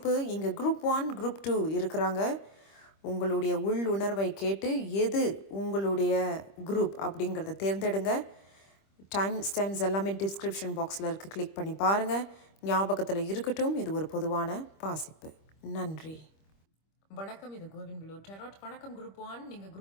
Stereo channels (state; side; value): late; right; 25 ms